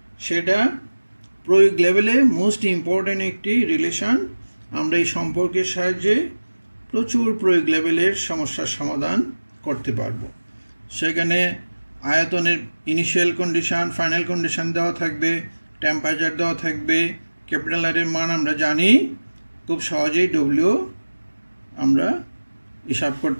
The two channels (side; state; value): both; inverted; correlation -1.00